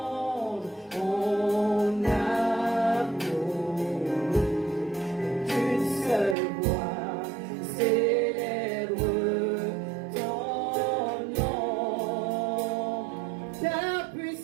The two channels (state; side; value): drops out; left; at 6.4 s